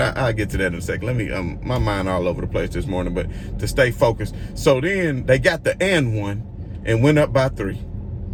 get to that in a second. Let me, my mind all over the place this morning, but to stay focused. So then they got the and one and went up by 3.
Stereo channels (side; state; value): both; identical; correlation 1.00